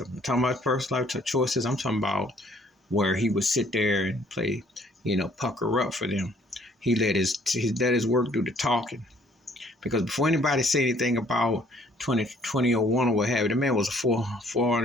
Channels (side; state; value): both; normal; correlation 0.61